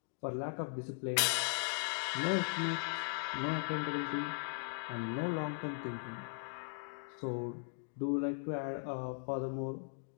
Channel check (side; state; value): right; silent; digital silence